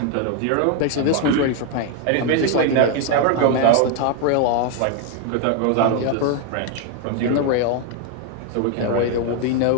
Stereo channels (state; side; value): different; both; correlation 0.01